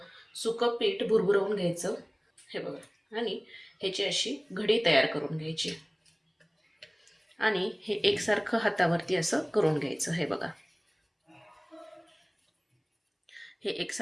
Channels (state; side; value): identical; both; correlation 1.00